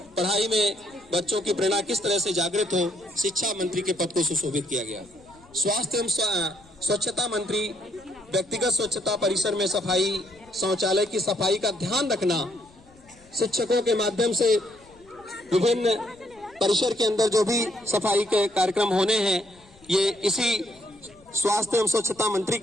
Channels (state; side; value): noise; left; rumble, 27 dB below the sound